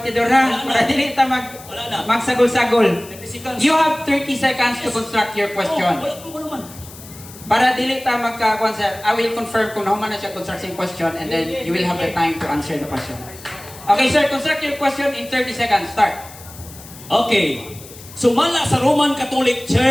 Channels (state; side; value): noise; left; hiss, 18 dB below the sound